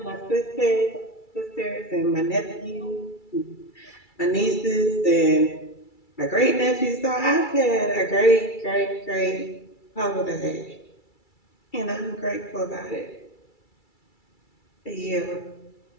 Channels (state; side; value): late; right; 2.3 ms